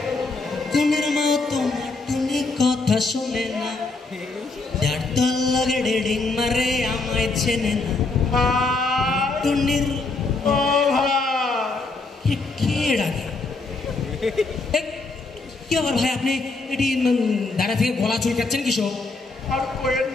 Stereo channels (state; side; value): quieter; right; 3.6 dB